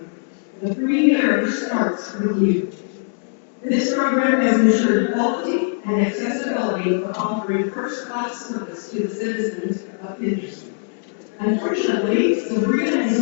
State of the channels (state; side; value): silent; right; digital silence